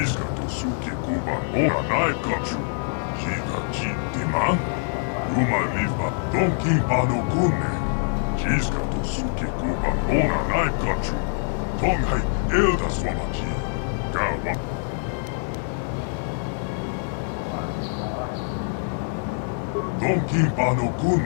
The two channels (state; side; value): silent; right; 62 dB below the other